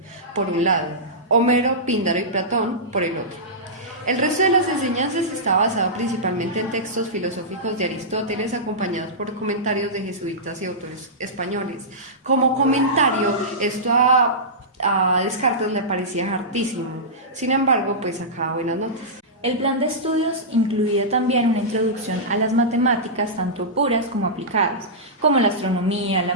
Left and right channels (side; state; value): both; normal; correlation -0.15